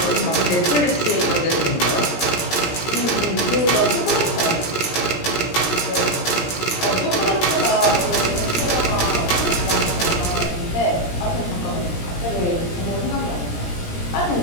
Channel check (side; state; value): right; late; 17 ms